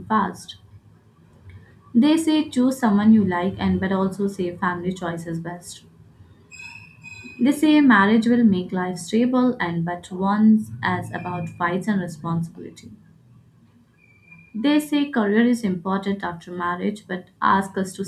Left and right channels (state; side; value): identical; both; correlation 1.00